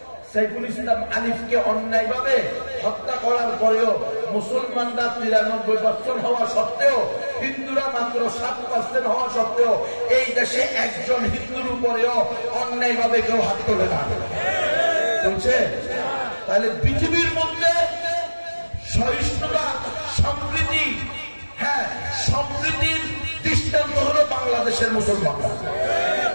সাইফুল ইসলাম আলিফকে অন্যায় ভাবে হত্যা করার পরেও মুসলমানরা 93% হওয়া সত্ত্বেও, হিন্দুরা মাত্র 7% হওয়া সত্ত্বেও এই দেশে একজন হিন্দুর উপরেও অন্যায় ভাবে কেউ হাত তোলে না। চলছে? তাহলে পৃথিবীর মধ্যে সহিষ্ণুতা, সম্প্রীতি, হ্যাঁ সম্প্রীতির দৃষ্টান্ত হলো বাংলাদেশের মুসলমানরা।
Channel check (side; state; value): both; inverted; correlation -1.00